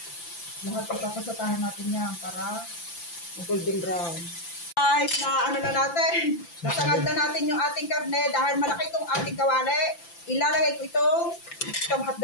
lahat ipapasatahan natin yan para golden brown. Guys, na ano na natin. Nasangad na natin yung ating karne dahil malaki itong ating kawali. Ilalagay ko itong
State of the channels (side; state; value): right; late; 5.9 ms